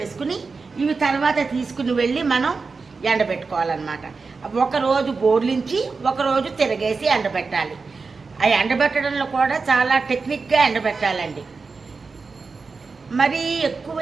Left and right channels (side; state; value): left; quieter; 4.5 dB